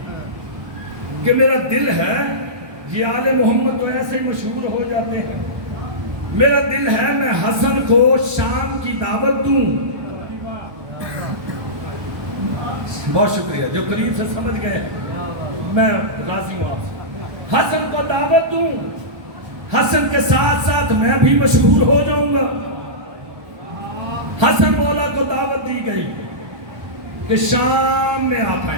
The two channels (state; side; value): late; left; 1.2 ms